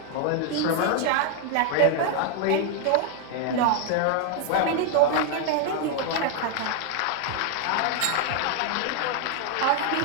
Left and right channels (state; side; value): different; both; correlation 0.00